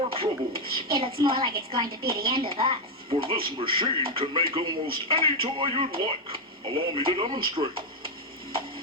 troubles. It looks more like it's going to be the end of us. For this machine can make almost any toy you'd like. Allow me to demonstrate.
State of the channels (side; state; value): both; normal; correlation 0.03